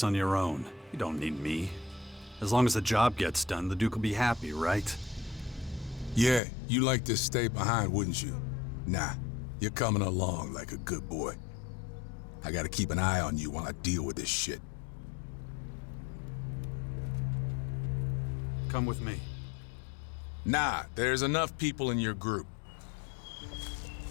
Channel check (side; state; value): right; drops out; at 6.4 s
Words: on your own? You don't need me. As long as the job gets done, the Duke will be happy, right? Yeah, you'd like to stay behind, wouldn't you? Nah, you're coming along like a good boy. I gotta keep an eye on you while I deal with this shit. Come with me. Nah, there's enough people in your group.